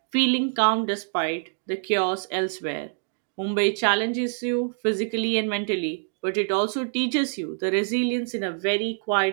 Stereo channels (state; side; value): silent; left; digital silence